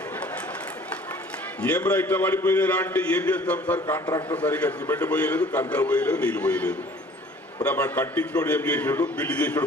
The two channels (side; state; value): both; normal; correlation 0.51